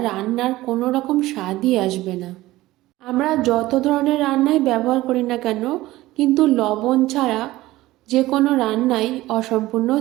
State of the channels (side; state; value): left; quieter; 17.3 dB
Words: রান্নার কোনো রকম স্বাদই আসবে না। আমরা যত ধরনের রান্নাই ব্যবহার করি না কেন, কিন্তু লবণ ছাড়া যে কোনো রান্নাই অসম্পূর্ণ